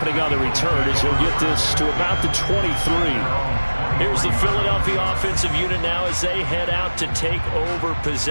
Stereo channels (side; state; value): both; inverted; correlation -1.00